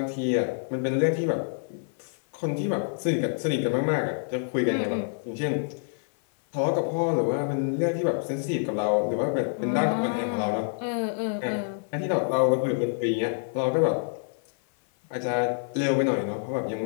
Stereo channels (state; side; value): silent; right; 55 dB below the other